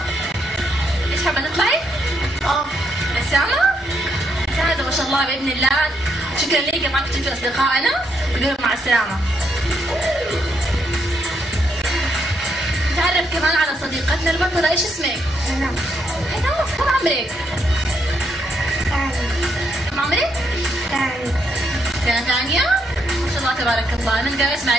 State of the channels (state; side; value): normal; both; correlation 0.77